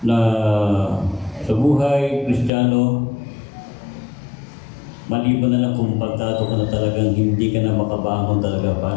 na sa buhay Kristiyano, maliban na lang kung pagtato ka na talagang hindi ka na makabangon talaga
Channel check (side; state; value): right; drops out; at 2.5 s